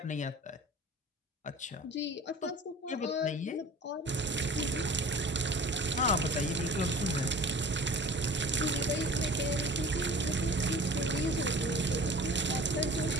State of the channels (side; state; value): both; normal; correlation 0.42